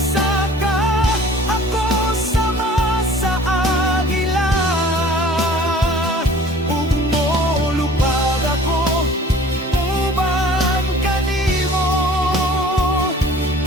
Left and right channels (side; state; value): both; normal; correlation 0.48